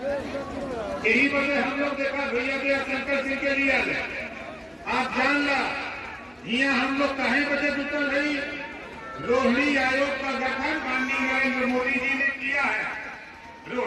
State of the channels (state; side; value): identical; both; correlation 1.00